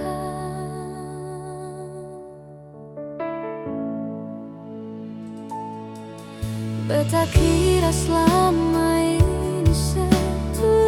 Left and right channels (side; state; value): both; identical; correlation 1.00